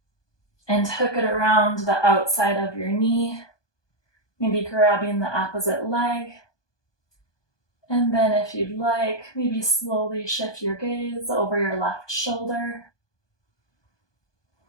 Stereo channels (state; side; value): late; right; 1.2 ms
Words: and hook it around the outside of your knee. Maybe grabbing the opposite leg. And then if you'd like, maybe slowly shift your gaze over your left shoulder.